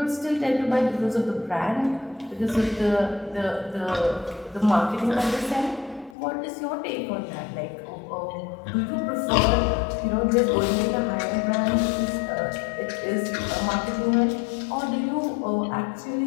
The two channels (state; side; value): drops out; right; at 6.2 s